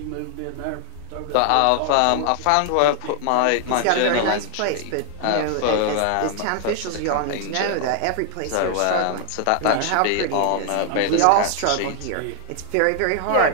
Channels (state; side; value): different; both; correlation 0.00